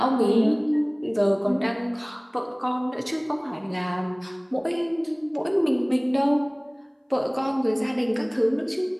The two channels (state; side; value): identical; both; correlation 1.00